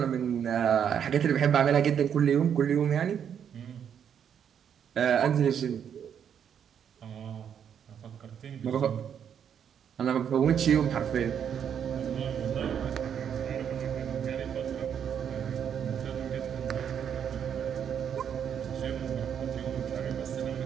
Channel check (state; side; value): quieter; left; 8.4 dB